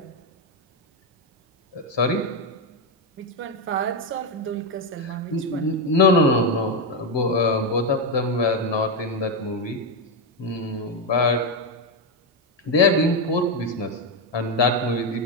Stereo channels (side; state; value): both; normal; correlation 0.06